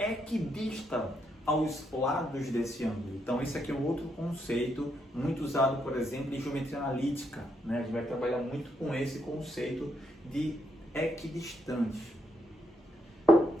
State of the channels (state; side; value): normal; both; correlation 0.78